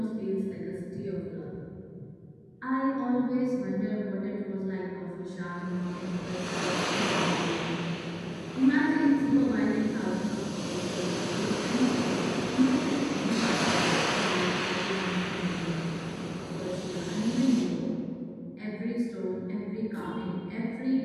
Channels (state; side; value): identical; both; correlation 1.00